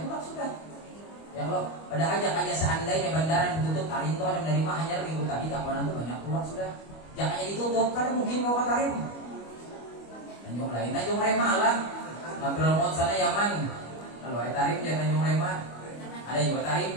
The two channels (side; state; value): right; late; 25 ms